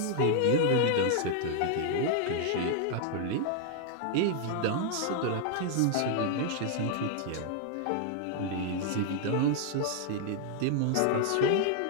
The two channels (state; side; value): different; both; correlation 0.00